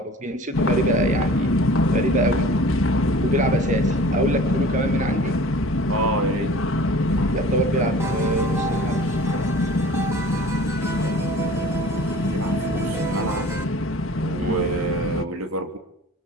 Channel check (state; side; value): normal; both; correlation 0.44